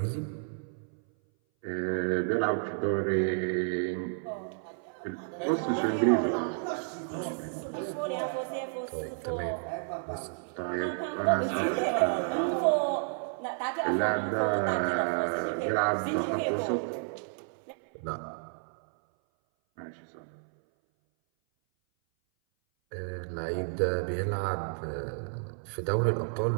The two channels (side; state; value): left; silent; 57 dB below the other